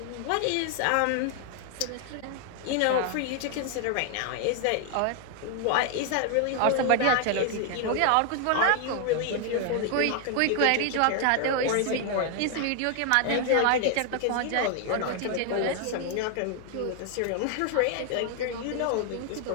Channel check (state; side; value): different; both; correlation 0.00